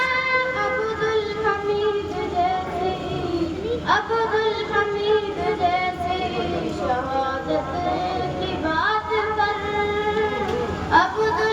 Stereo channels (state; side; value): identical; both; correlation 1.00